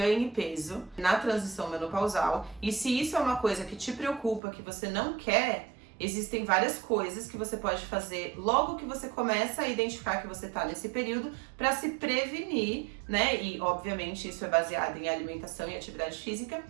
peso na transição menopausal, e se isso é uma coisa que te preocupa, que você não quer, Existem várias coisas que você pode fazer logo que você começa a identificar que você está nesse período para se prevenir, né? E obviamente isso é baseado em alimentação e atividade física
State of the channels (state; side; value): drops out; left; at 4.4 s